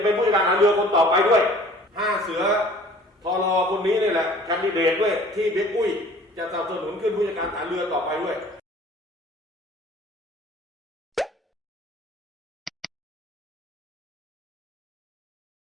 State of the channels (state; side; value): normal; both; correlation 0.50